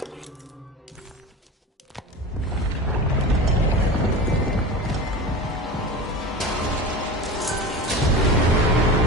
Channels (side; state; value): both; normal; correlation 0.30